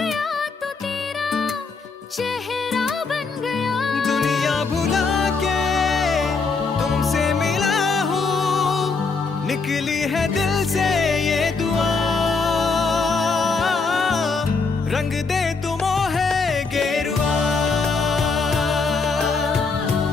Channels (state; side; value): quieter; right; 4.4 dB